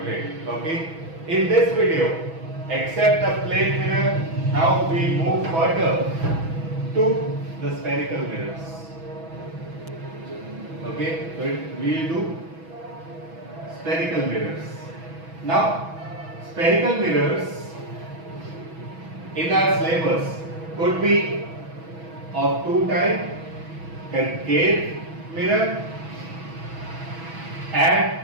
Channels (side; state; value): left; late; 6.1 ms